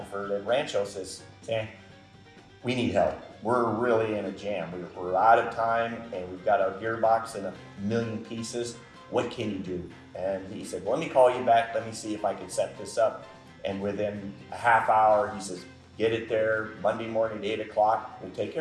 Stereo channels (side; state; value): both; identical; correlation 1.00